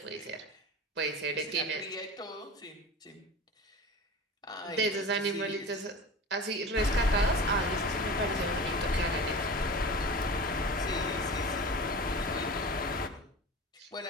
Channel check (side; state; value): both; normal; correlation 0.33